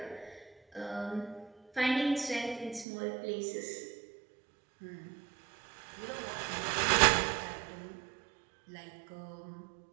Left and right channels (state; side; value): drops out; left; at 2.9 s